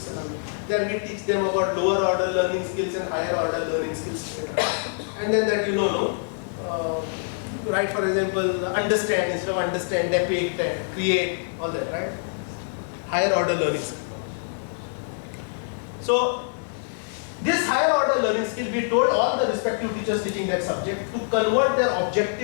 Then we teach them about lower order learning skills and higher order learning skills, etc. And then that right, for example, understand instead of understand, depict, create, all that, right? Higher order learning skill. So this higher order learning skill, we told all the respective teachers teaching that subject to convert their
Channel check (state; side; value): silent; right; digital silence